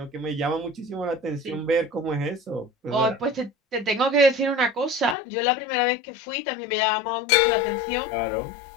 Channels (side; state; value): right; drops out; at 5.2 s